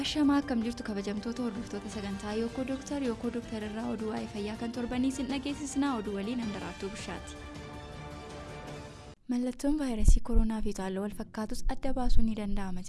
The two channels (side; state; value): both; identical; correlation 1.00